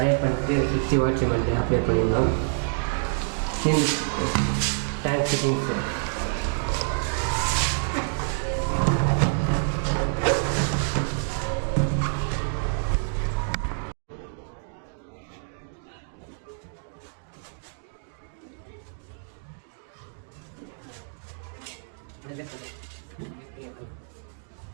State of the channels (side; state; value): left; silent; digital silence